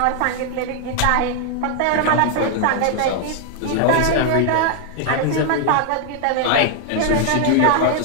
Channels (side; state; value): both; different; correlation 0.00